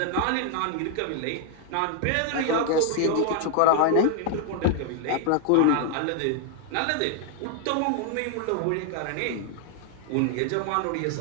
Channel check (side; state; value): both; different; correlation 0.00